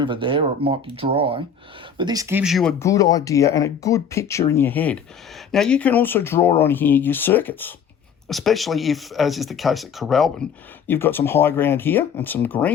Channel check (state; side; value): quieter; right; 6.9 dB